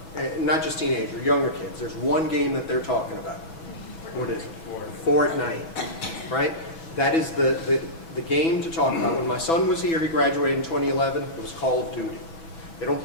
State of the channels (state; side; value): late; right; 6.1 ms